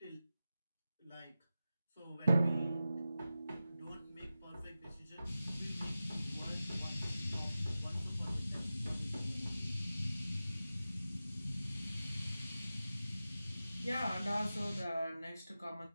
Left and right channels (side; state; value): both; inverted; correlation -0.94